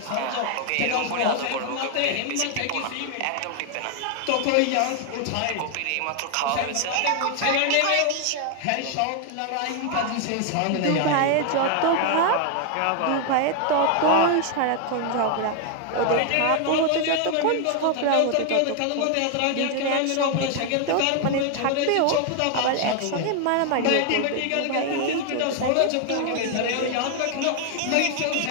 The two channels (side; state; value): both; different; correlation 0.00